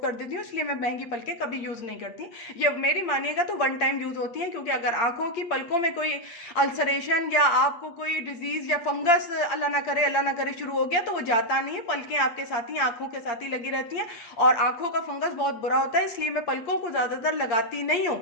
देती हूँ, इसलिए मैं महंगी पलके कभी यूज़ नहीं करती। ये मेरी मानिएगा तो वन टाइम यूज़ होती है, क्योंकि अगर आँखों की पलकों में कोई अल्सरेशन या आपको कोई डिजीज़ या फंगस अल्लाह ना करे शुरू हो गया, तो वो जाता नहीं है, पलकें आपके साथ ही, आँखों के साथ ही लगी रहती हैं, और आँखों का फंगस बहुत बुरा होता है, इसलिए मैं पलकों को ज़्यादातर लगाती नहीं हूँ,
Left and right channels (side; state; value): right; late; 8.7 ms